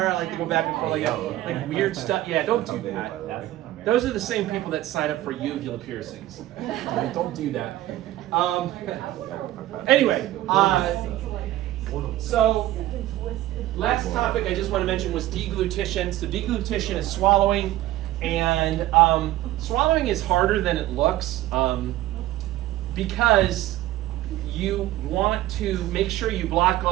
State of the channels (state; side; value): quieter; left; 15.1 dB